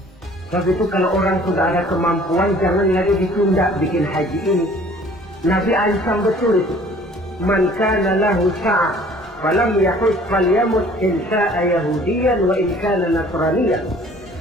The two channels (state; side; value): normal; both; correlation 0.53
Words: Sebab itu kalau orang sudah ada kemampuan, jangan lagi ditunda bikin haji ini. Nabi Aisyah betul itu. Man kana lahu sa'ah falam yahus falyamut in sha'a yahudiyan wa in kana nasraniyan.